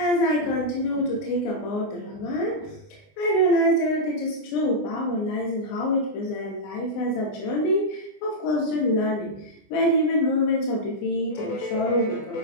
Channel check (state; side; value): late; right; 20 ms